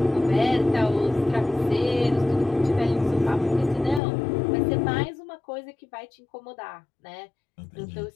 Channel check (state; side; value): drops out; right; at 4.0 s